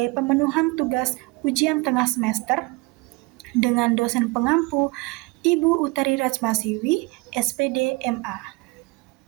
pemenuhan tugas ujian tengah semester dengan dosen pengampu Ibu Utari Rajmasiwi, SPD MA.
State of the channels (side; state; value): left; quieter; 25.2 dB